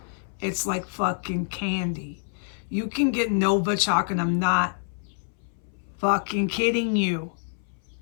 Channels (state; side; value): silent; right; 60 dB below the other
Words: It's like fucking candy. You can get Novichok, and I'm not fucking kidding you,